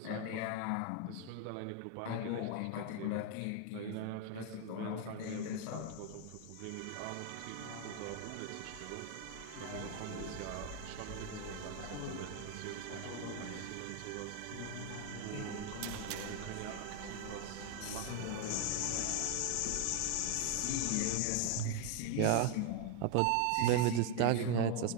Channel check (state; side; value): different; both; correlation 0.01